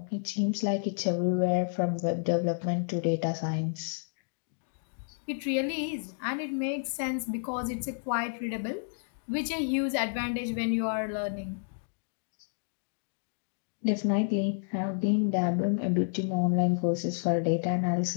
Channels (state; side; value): silent; right; digital silence